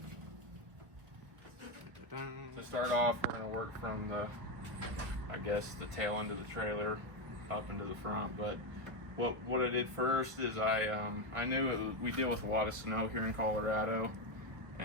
To start off, we're going to work from the tail end of the trailer up into the front. But what I did first is I knew we deal with a lot of snow here in Colorado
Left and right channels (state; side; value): late; left; 1.5 ms